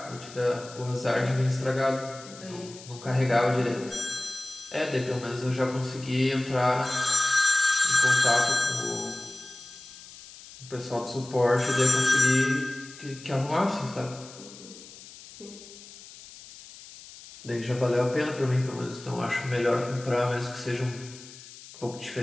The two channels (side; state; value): left; noise; hiss, 18 dB below the sound